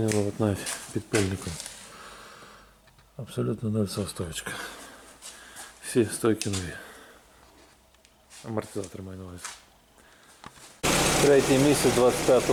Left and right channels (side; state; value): both; identical; correlation 1.00